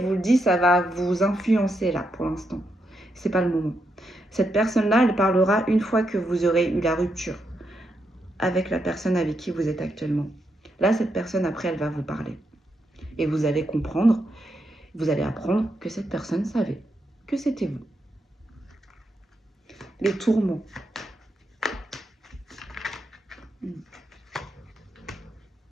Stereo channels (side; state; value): both; normal; correlation 0.82